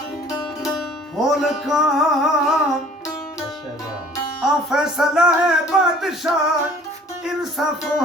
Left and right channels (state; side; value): normal; both; correlation 0.52